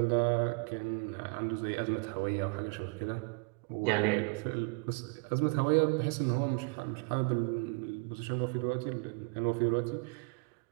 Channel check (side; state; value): left; quieter; 34.4 dB